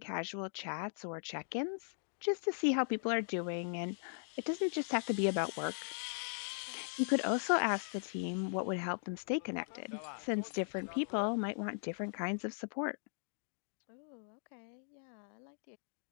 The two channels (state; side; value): silent; right; digital silence